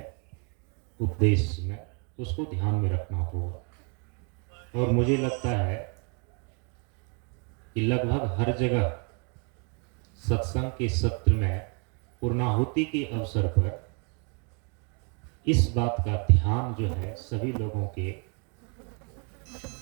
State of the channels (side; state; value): left; quieter; 36.8 dB